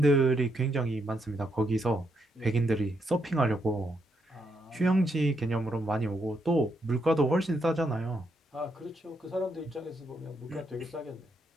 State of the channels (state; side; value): normal; both; correlation 0.78